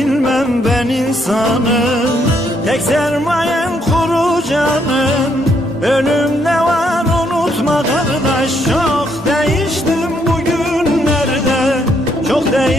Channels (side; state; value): both; normal; correlation 0.73